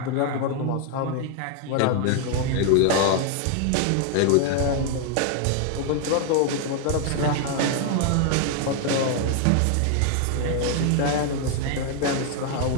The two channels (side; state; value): both; different; correlation 0.00